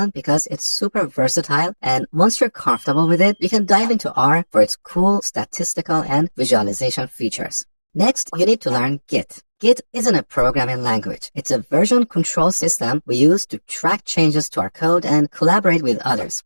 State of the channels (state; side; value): inverted; both; correlation -1.00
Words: because it's super versatile, and once you're comfortable with it, you can dive into R for its cool statistical and visualization features. Next, you need to learn Git. Git isn't a programming language. It's a version control system we use to track changes to our code and collaborate with others.